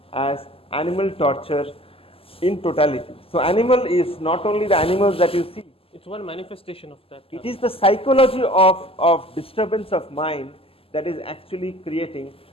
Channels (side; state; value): right; late; 0.27 ms